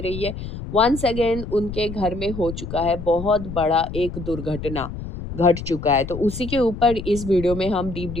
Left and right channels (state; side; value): noise; left; rumble, 9 dB below the sound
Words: है। वन्स अगेन उनके घर में हो चुका है बहुत बड़ा एक दुर्घटना, घट चुका है। तो उसी के ऊपर इस वीडियो में हम डीप